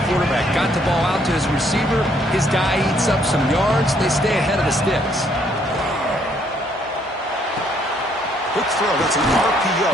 quarterback. Got the ball out to his receiver. His guy eats up some yards. They stay ahead of the sticks. Quick throw. That's an RPO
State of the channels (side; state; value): both; normal; correlation 0.68